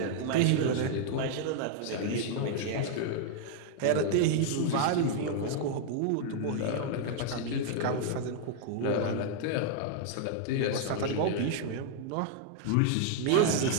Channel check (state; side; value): different; both; correlation 0.00